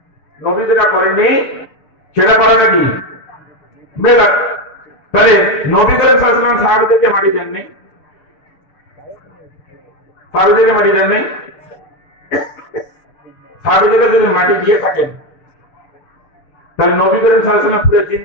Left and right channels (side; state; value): right; late; 6.8 ms